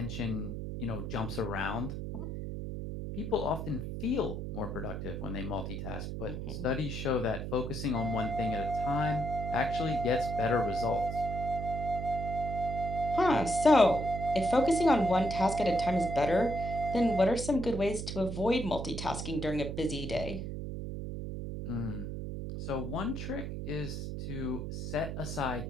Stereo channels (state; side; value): noise; right; hum, 5 dB below the sound